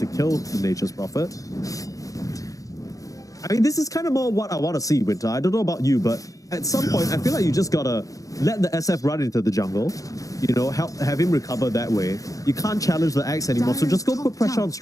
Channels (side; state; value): right; late; 0.17 ms